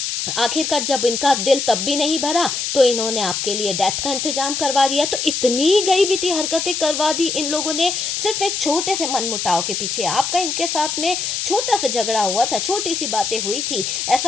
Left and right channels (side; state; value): left; noise; hiss, 2 dB below the sound